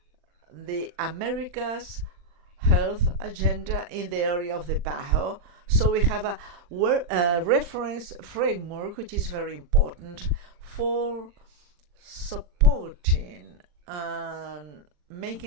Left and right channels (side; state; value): left; late; 40 ms